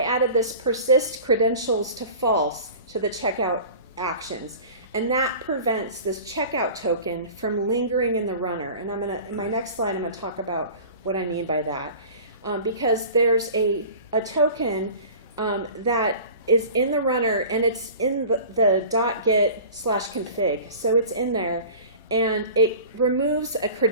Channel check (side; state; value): both; inverted; correlation -0.40